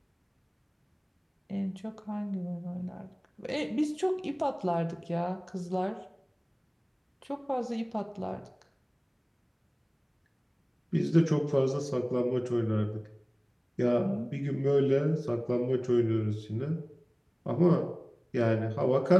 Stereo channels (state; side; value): identical; both; correlation 1.00